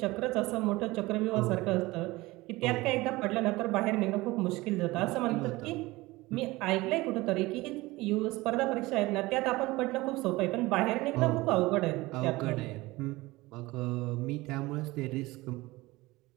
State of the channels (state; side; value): quieter; left; 20.4 dB